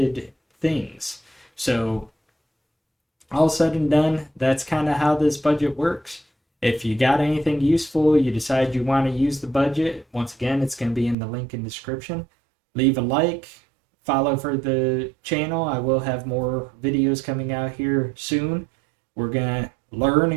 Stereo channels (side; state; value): left; drops out; at 11.2 s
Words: things. So, all said and done, that's kind of how this budget works. If you got anything useful, you decide you want to use the budget, once again, it's going to be in the link in the description. Leave a like, follow for the channel. I will have more videos coming out here soon. We're going to learn